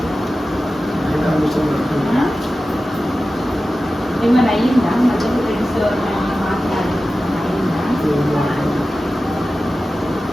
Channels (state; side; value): normal; both; correlation 0.94